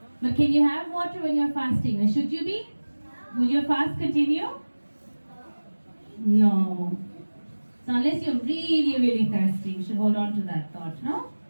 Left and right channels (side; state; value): both; inverted; correlation -1.00